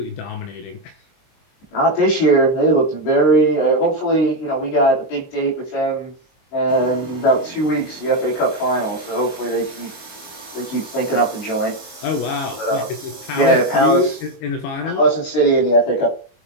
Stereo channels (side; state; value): right; late; 22 ms